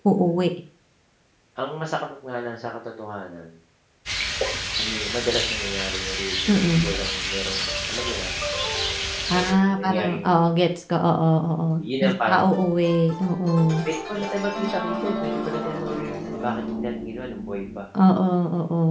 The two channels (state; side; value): identical; both; correlation 1.00